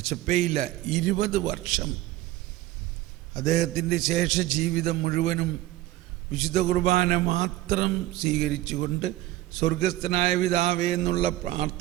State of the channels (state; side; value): quieter; left; 16.1 dB